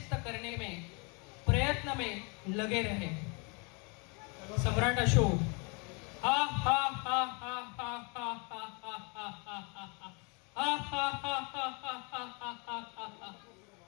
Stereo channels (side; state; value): right; quieter; 32.6 dB